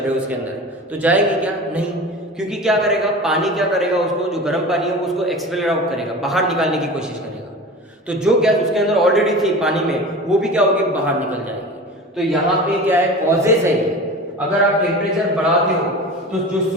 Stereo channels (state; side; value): normal; both; correlation 0.34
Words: हो उसके अंदर, तो जाएगी क्या? नहीं। क्योंकि क्या करेगा, पानी क्या करेगा, उसको जो गर्म पानी है वो उसको एक्सपेल आउट करेगा, बाहर निकालने की कोशिश करेगा। तो जो गैस उसके अंदर ऑलरेडी थी पानी में, वो भी क्या होगी, बाहर निकल जाएगी। तो यहाँ पे क्या है, कॉजेस है ये। अगर आप टेम्परेचर बढ़ाते हो तो जो